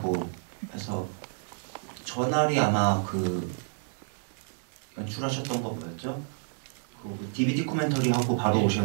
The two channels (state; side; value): silent; left; digital silence